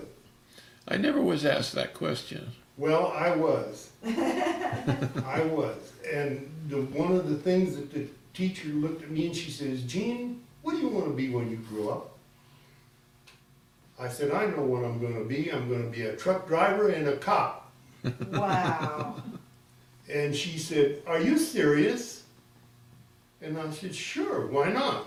I never was asked that question. Well, I was. I was. And one of the things that the teacher looked at me and she says, Gene, what do you want to be when you grow up? I said, I know what I'm going to be. I'm going to be a truck driver and a cop. Wow. And she said, are you serious? And I said, sure, why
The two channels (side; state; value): both; identical; correlation 1.00